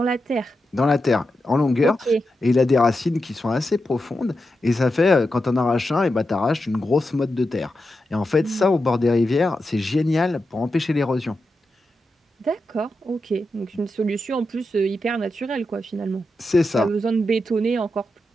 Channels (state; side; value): normal; both; correlation 0.88